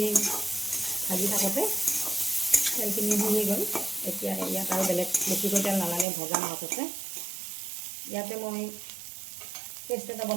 ভাজি থাকোঁতে তেলখিনি শুহি গ'ল। এতিয়া ইয়াত আৰু বেলেগ বেছিকৈ তেল নালাগে, ভজা মাছ আছে। ইয়াতে মই পেষ্ট এটা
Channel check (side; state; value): left; drops out; at 6.1 s